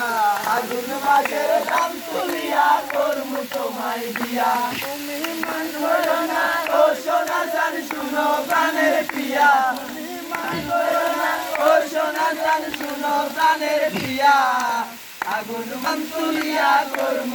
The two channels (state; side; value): identical; both; correlation 1.00